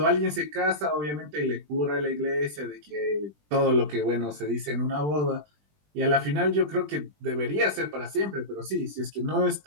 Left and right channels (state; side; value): late; left; 20 ms